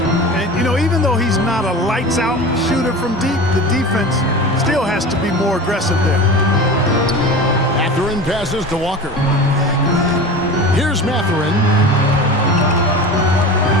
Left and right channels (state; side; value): normal; both; correlation 0.32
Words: And, you know, even though he's not a lights-out shooter from deep, the defense still has to be more aggressive there. Mathurin passes to Walker. Here's Mathurin.